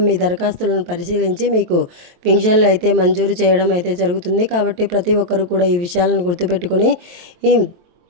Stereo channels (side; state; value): left; late; 23 ms